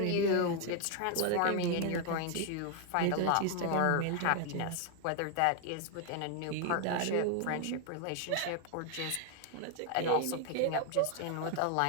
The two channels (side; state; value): both; different; correlation 0.01